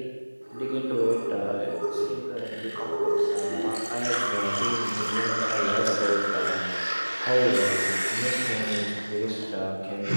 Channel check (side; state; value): both; inverted; correlation -1.00